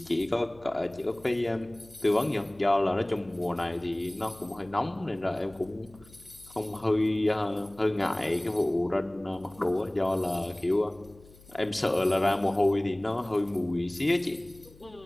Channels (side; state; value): left; noise; hum, 24 dB below the sound